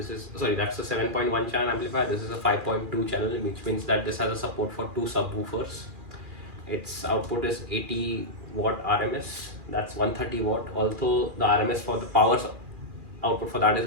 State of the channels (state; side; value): late; left; 2.4 ms